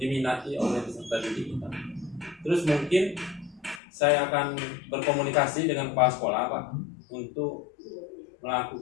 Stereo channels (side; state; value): right; drops out; at 3.8 s